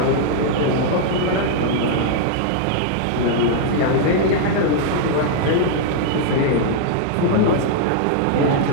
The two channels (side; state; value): both; different; correlation -0.01